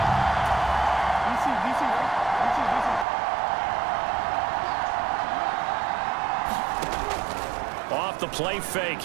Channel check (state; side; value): drops out; left; at 3.1 s